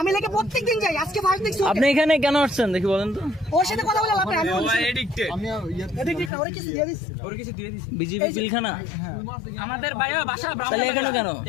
লেগে প্রত্যেকদিন যাই, আজকে ফার্স্ট দেখছি। আপনি এখানে কেন আসছেন দেখি বলেন তো? ওর সাথে কথা বলে লাভ নাই। আমি এডিক্টেড, ওর কিছু দিয়ে দিছি। বিজেপি পিলখানা আমাদের ভাইও বাসা তাহলে এখানে কেন?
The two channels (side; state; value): right; drops out; at 6.3 s